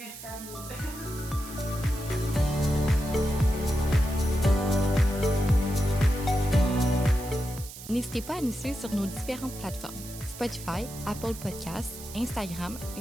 à vous. N'hésitez pas à nous suivre sur nos différentes plateformes Spotify, Apple Podcasts, Instagram,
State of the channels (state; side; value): noise; right; hiss, 14 dB below the sound